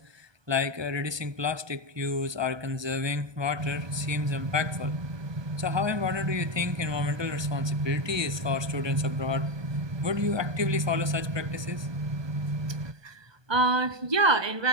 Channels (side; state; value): left; late; 1.2 ms